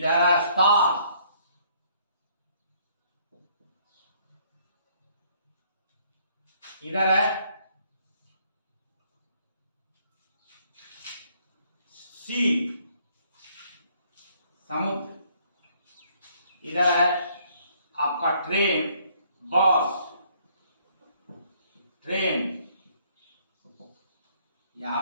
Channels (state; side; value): inverted; both; correlation -0.65